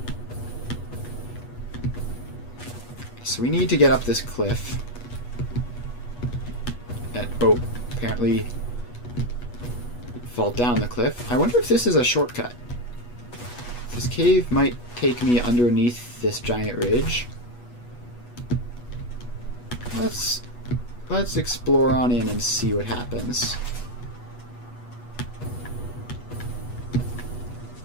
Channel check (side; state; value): right; late; 8.2 ms